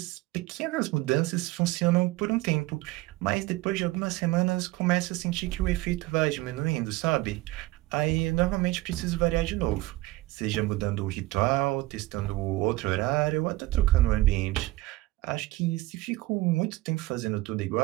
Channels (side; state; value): left; quieter; 19.1 dB